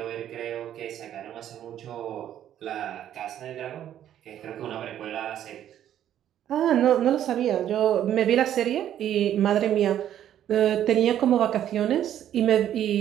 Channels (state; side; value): quieter; left; 10.9 dB